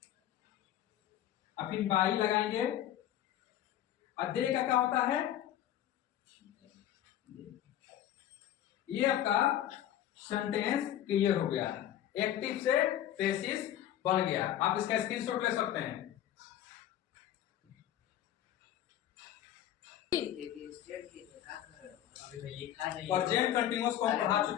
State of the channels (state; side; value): quieter; right; 11.7 dB